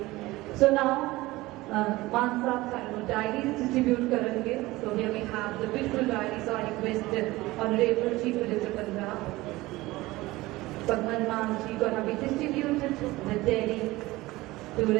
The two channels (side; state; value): left; quieter; 19.3 dB